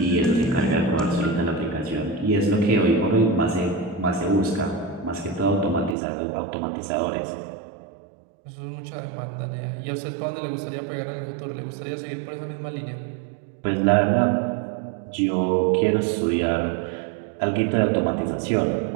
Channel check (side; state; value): left; drops out; at 6.0 s